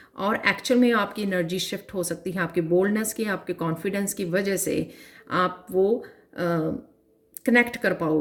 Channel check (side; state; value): both; identical; correlation 1.00